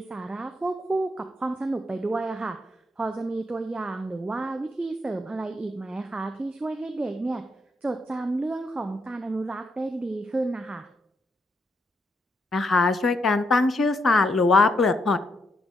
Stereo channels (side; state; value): both; normal; correlation 0.78